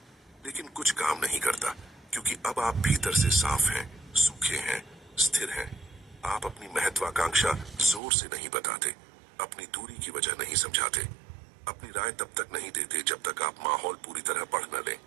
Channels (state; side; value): drops out; left; at 8.0 s